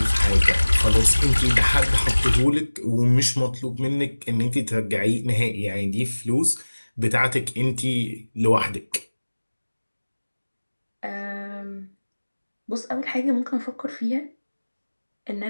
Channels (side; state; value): both; inverted; correlation -1.00